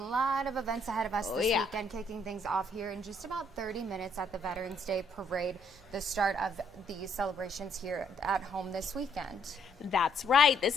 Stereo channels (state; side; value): noise; right; hum, 27 dB below the sound